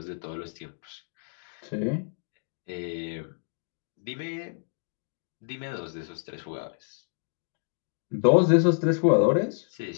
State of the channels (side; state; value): right; silent; digital silence